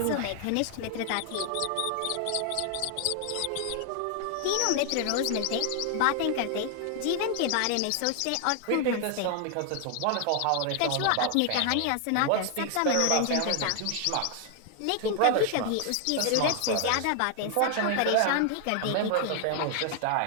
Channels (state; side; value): different; both; correlation 0.00